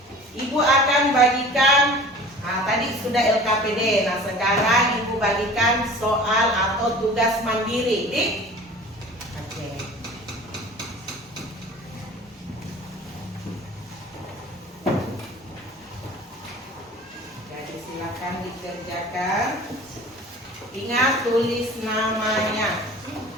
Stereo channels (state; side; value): normal; both; correlation 0.42